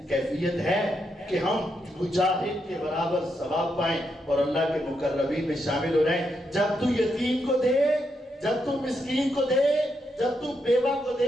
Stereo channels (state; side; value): normal; both; correlation 0.81